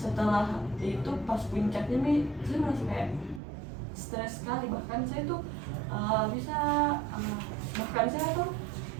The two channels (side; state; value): left; drops out; at 3.4 s